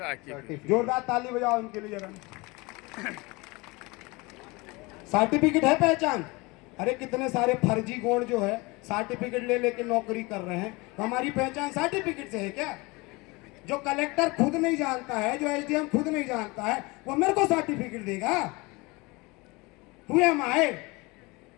जोरदार ताली बजाओ इनके लिए जरा। सर्टिफिकेट है पहचान। अरे कितने सारे फर्जी गौंड जो है सर्टिफिकेट ले लेके नौकरी कर रहे हैं। तो हमारी पहचान सर्टिफिकेट से है क्या? जो कलेक्टर खुद नहीं जानता है, जो एसडीएम खुद नहीं जानता है, वो मेरे को सर्टिफिकेट देगा? Who am I?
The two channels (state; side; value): quieter; right; 24.8 dB